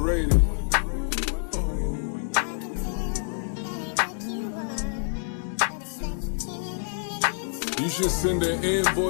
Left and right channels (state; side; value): silent; right; digital silence